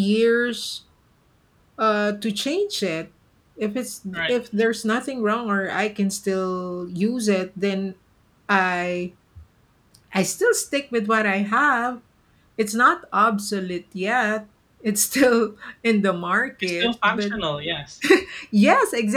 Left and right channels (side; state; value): both; identical; correlation 1.00